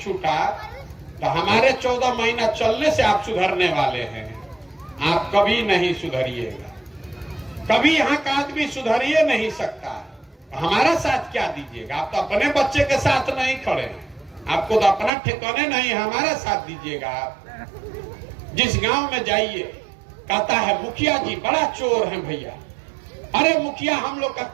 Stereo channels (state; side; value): drops out; left; at 15.1 s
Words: तो हमारे 14 महीना चलने से आप सुधरने वाले हैं। आप कभी नहीं सुधरिएगा, कभी यहाँ का आदमी सुधरिए नहीं सकता। हमारा साथ क्या दीजिएगा? आप तो अपने बच्चे के साथ नहीं खड़े, आपको तो अपना ठिकाने नहीं, हमारा साथ दीजिएगा। आप जिस गांव में जाइए, कहता है मुखिया जी बड़ा चोर है भैया। अरे मुखिया हम लोग का